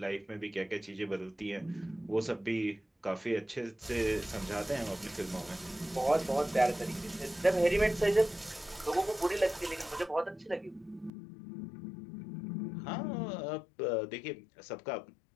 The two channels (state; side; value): drops out; right; at 11.1 s